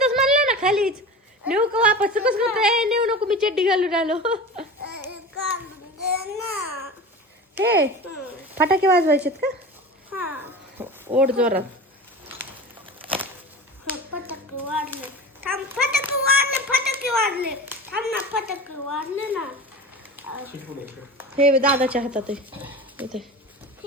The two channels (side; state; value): both; normal; correlation 0.32